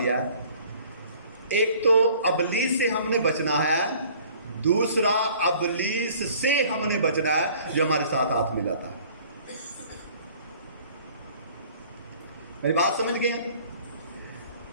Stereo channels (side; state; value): both; inverted; correlation -0.53